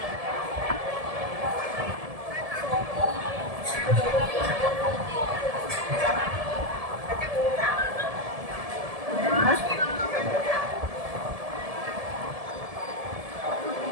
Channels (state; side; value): late; left; 1.7 ms